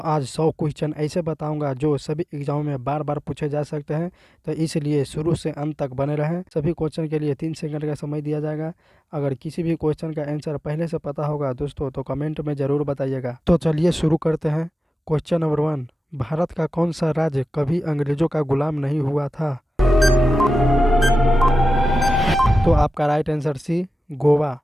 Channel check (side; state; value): both; normal; correlation 0.94